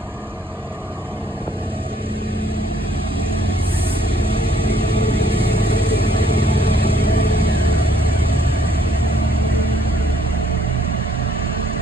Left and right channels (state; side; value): normal; both; correlation 0.65